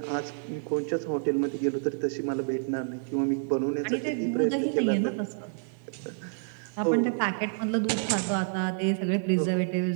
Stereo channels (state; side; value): silent; left; digital silence